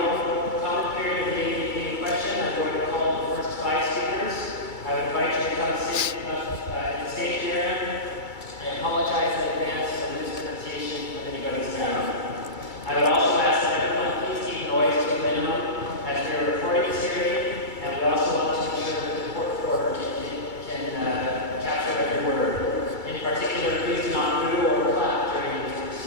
oral comment period of the ADEQ question. I'm going to call the first 5 speakers. I would invite you to come sit in the stage area. I apologize in advance for the mispronunciation of anybody's name. I would also ask that everyone please keep noise to a minimum as we are recording this hearing, and we also want to ensure that the court reporter can capture every word. In particular, please do not boo or clap during these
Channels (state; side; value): late; right; 2.3 ms